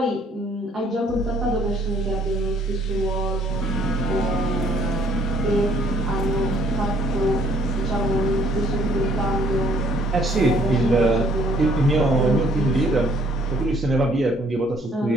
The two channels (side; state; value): both; normal; correlation 0.62